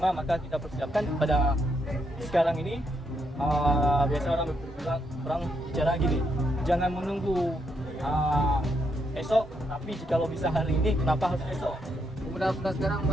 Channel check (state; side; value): normal; both; correlation 0.78